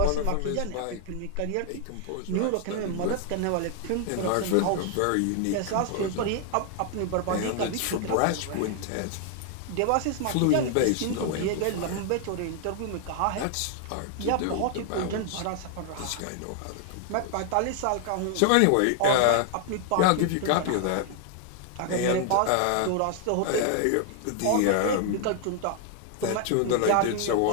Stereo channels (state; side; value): different; both; correlation 0.00